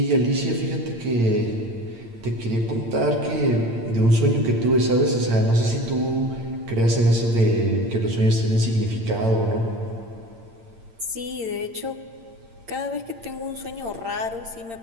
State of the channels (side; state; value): left; late; 8.8 ms